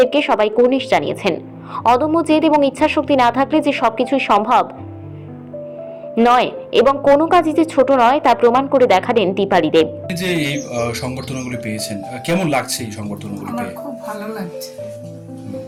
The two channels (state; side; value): identical; both; correlation 1.00